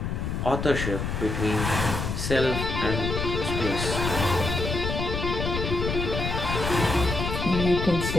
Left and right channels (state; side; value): noise; left; rumble, 3 dB below the sound